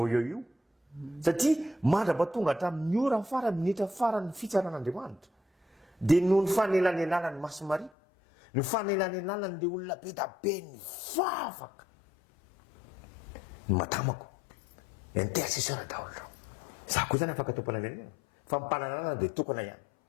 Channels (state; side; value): drops out; right; at 7.9 s